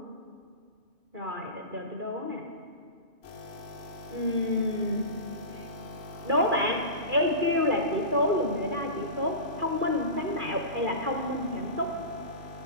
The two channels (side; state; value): left; late; 2.5 ms